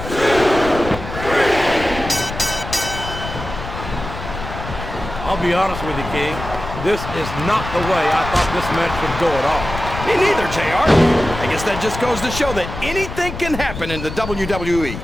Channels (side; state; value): left; noise; rumble, 9 dB below the sound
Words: 2, 3. I'll be honest with you, King. This is not the way I thought this match would go at all. Me neither, JR. I guess that just goes to show that anything can happen in the WWE.